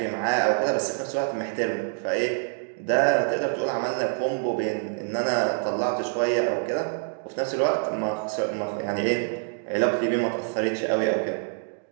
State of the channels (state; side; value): silent; left; digital silence